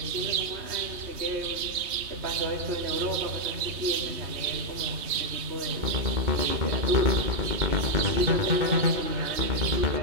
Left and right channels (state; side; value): late; left; 3.2 ms